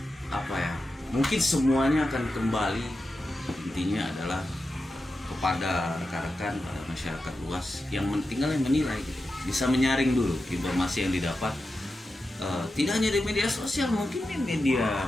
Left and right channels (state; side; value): normal; both; correlation 0.90